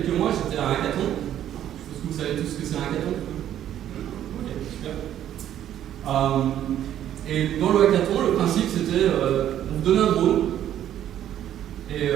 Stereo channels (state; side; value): quieter; left; 11.1 dB